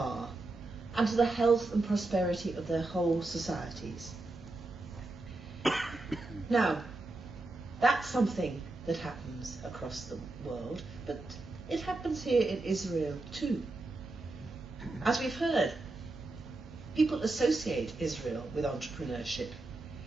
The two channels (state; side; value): quieter; left; 3.1 dB